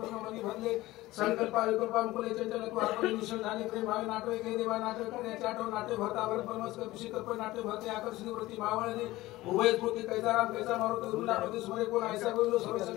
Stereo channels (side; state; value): right; quieter; 18.0 dB